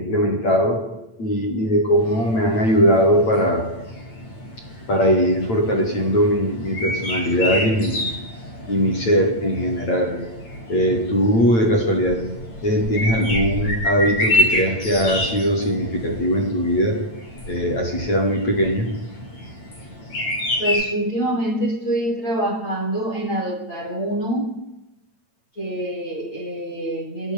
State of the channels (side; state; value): right; late; 8.9 ms